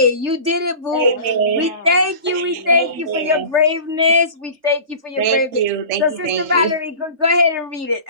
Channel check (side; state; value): left; late; 3.3 ms